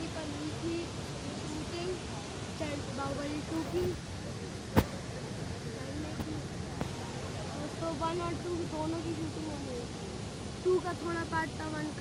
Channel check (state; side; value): identical; both; correlation 1.00